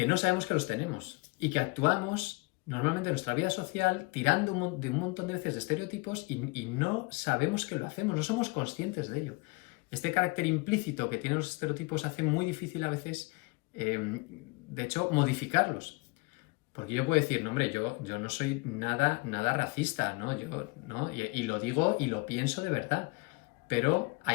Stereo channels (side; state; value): right; quieter; 27.3 dB